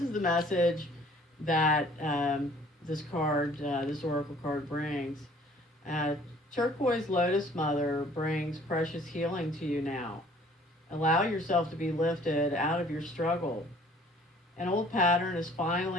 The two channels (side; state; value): both; normal; correlation 0.55